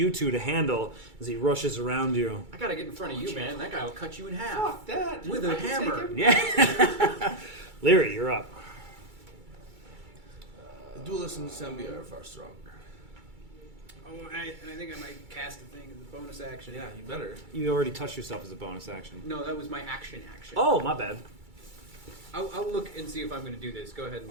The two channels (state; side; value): late; left; 2.3 ms